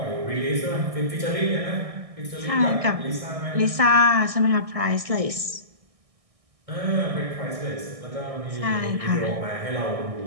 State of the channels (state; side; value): late; left; 1.6 ms